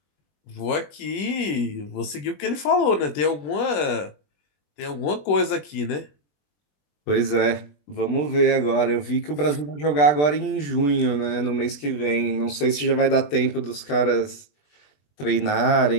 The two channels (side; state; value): right; late; 20 ms